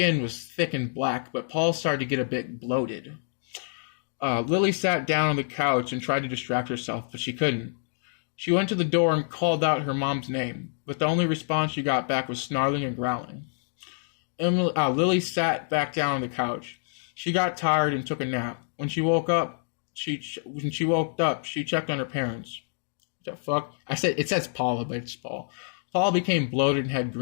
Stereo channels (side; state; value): right; silent; digital silence